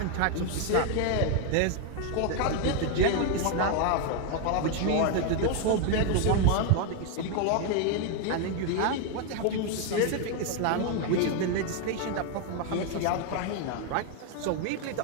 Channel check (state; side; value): different; both; correlation 0.01